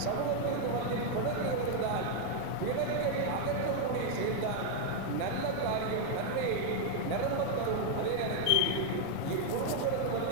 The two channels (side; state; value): both; different; correlation 0.00